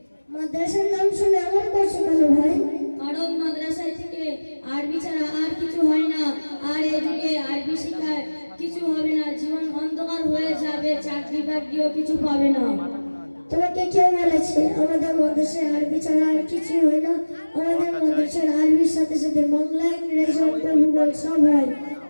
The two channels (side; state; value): both; inverted; correlation -1.00